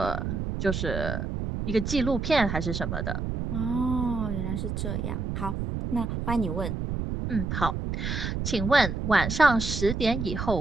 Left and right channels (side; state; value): right; noise; rumble, 3 dB below the sound